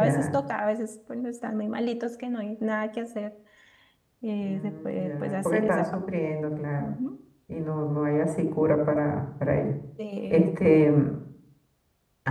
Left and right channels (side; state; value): both; identical; correlation 1.00